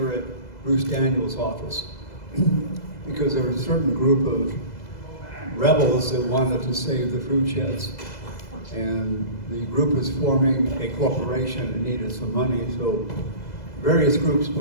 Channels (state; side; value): late; right; 2.0 ms